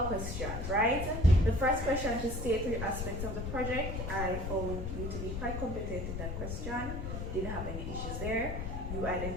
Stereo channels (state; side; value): noise; left; rumble, 4 dB below the sound